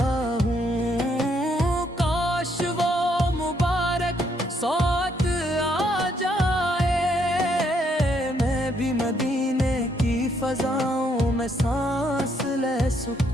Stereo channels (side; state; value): both; normal; correlation 0.72